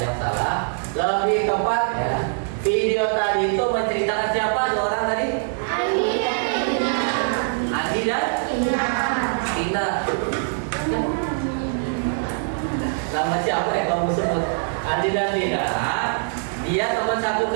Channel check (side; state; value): left; silent; digital silence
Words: yang salah. Lebih tepat ya. Video tadi itu menceritakan siapa dua orang tadi? Andi dan Tina. Nama siapa yang kamu sebut? Andi dan Tina. Dia teman satu